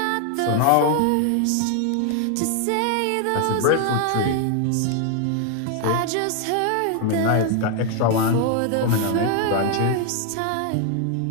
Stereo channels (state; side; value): different; both; correlation 0.00